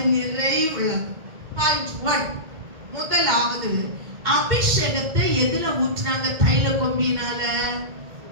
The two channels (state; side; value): late; left; 2.1 ms